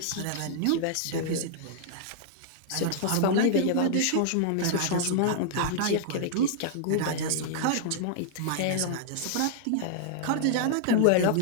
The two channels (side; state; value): both; different; correlation -0.01